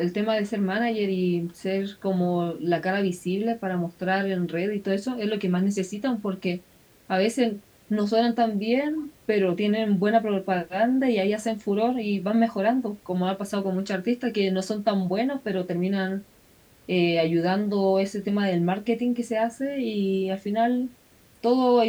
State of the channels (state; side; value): identical; both; correlation 1.00